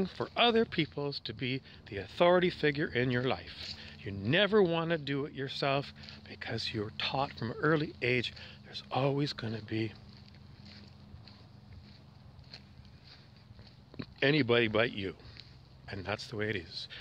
for other peoples to be the authority figure in your life. You never want to do it yourself, because you're taught from an early age there's always going to be anybody but you. And that's the way it is.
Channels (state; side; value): identical; both; correlation 1.00